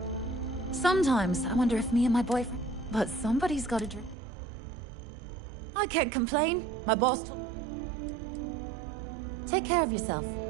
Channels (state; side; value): drops out; left; at 4.2 s